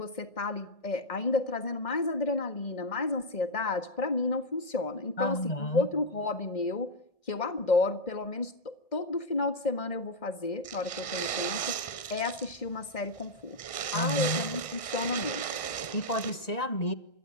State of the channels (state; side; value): late; right; 1.6 ms